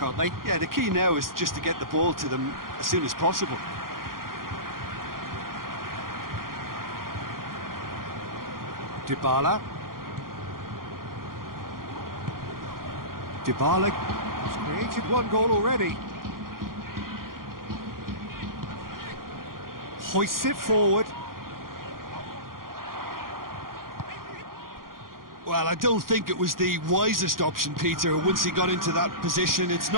aren't they? Yeah, the key now is just to get the ball to them as soon as possible. Dybala. Dybala has created 1 goal already. Hoists it forward. Well, I don't think it was the wisest option, Peter, once he got into that position. It's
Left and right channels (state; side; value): late; left; 0.92 ms